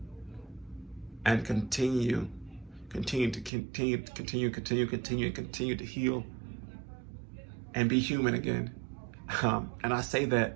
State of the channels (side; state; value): left; drops out; at 3.5 s